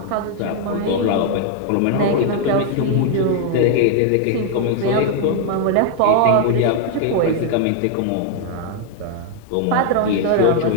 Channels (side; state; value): both; different; correlation 0.00